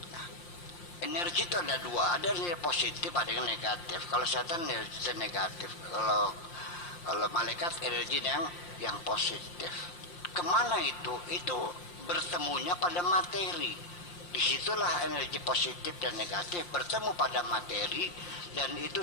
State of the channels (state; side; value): late; right; 5.7 ms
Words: Nah, energi itu ada dua, ada yang positif, ada yang negatif. Kalau setan energi negatif, kalau malaikat energi yang positif. Kemana itu? Itu bertemunya pada materi. Disitulah energi positif dan negatif bertemu pada materi, dan